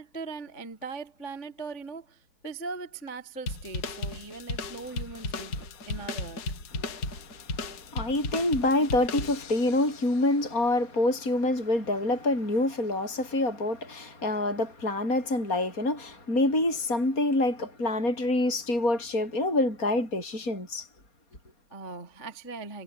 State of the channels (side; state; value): right; late; 4.2 ms